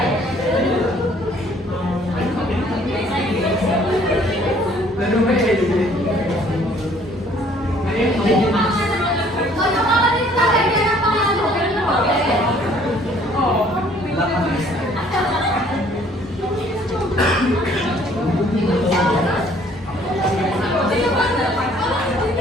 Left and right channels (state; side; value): normal; both; correlation 0.59